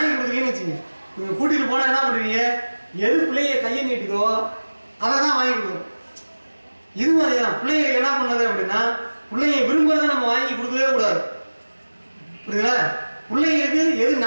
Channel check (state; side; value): inverted; both; correlation -1.00